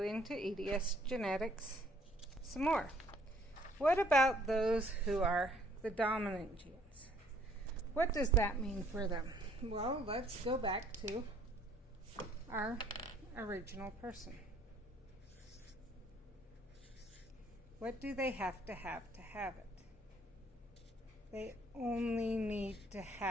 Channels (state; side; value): normal; both; correlation 0.62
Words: EDS genetics some more. What about those who are the dominant genes? What does that mean for them? Well, let's go back to our original person. What do they have to have it? They only need to